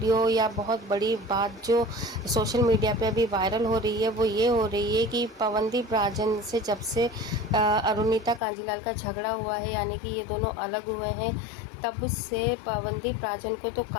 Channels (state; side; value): drops out; right; at 8.4 s